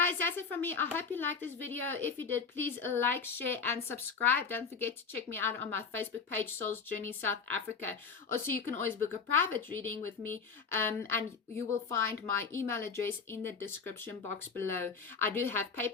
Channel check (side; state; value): right; quieter; 5.5 dB